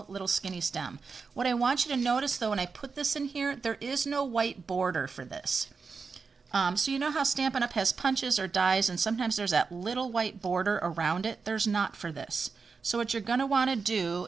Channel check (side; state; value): left; quieter; 5.0 dB